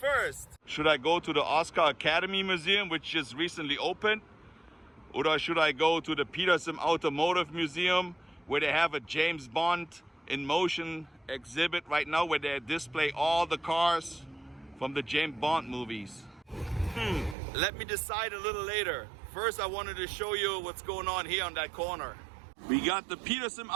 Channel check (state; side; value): drops out; left; at 17.4 s